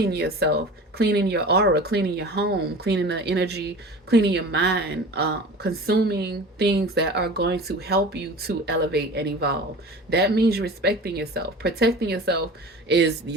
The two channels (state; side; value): normal; both; correlation 0.38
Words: yourself, cleaning your aura, cleaning your home, cleaning the energy, cleaning your mind, consuming things that are going to help you to elevate and evolve. That means respecting yourself. Protecting yourself is